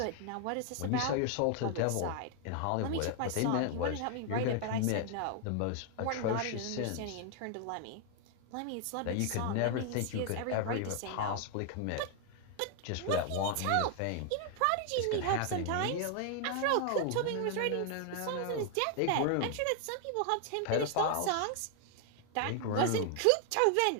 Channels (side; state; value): both; different; correlation 0.00